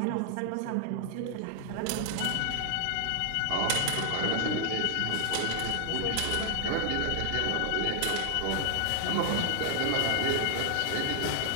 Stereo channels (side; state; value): both; different; correlation 0.00